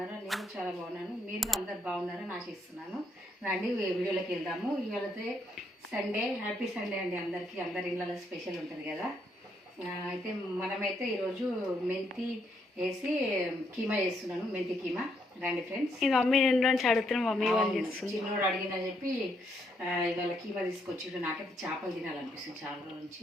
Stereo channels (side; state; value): both; normal; correlation 0.75